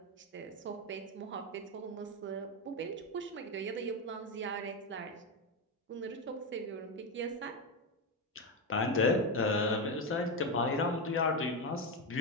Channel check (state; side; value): normal; both; correlation 0.10